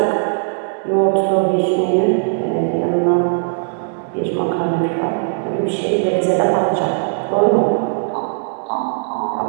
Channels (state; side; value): silent; left; digital silence